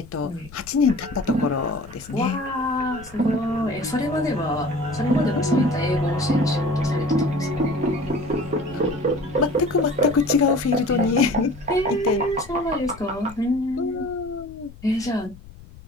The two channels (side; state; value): left; noise; rumble, 19 dB below the sound